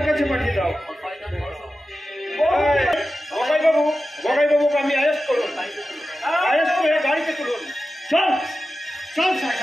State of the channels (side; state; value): both; normal; correlation 0.93